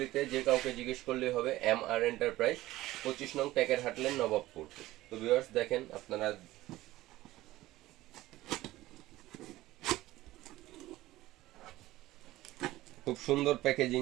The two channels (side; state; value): left; quieter; 16.8 dB